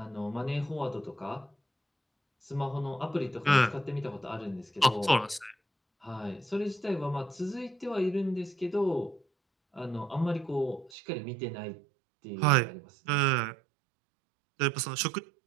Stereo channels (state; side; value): drops out; left; at 10.9 s